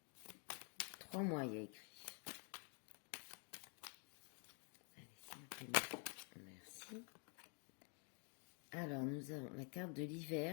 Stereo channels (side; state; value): right; quieter; 38.4 dB